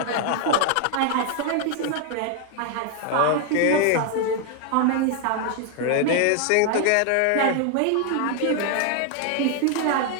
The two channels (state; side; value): different; both; correlation 0.00